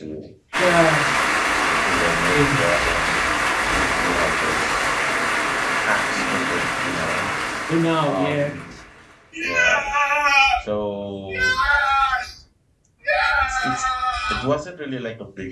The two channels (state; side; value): identical; both; correlation 1.00